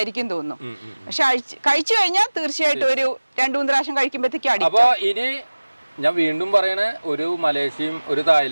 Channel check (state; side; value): inverted; both; correlation -1.00